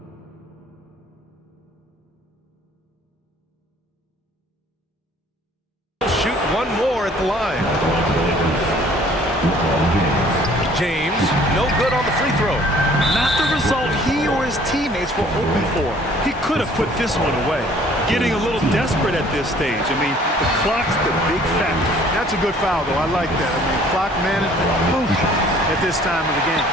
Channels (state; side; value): normal; both; correlation 0.55